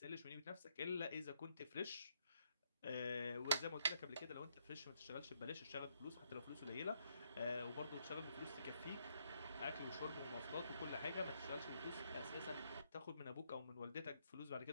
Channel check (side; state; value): both; inverted; correlation -0.74